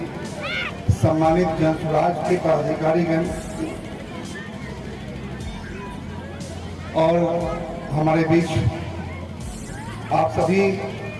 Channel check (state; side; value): identical; both; correlation 1.00